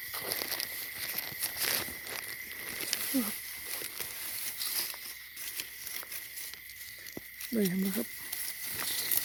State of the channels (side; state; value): right; noise; hum, 28 dB below the sound